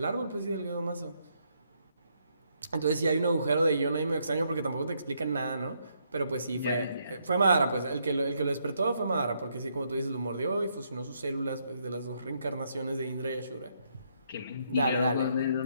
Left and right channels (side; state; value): both; inverted; correlation -0.74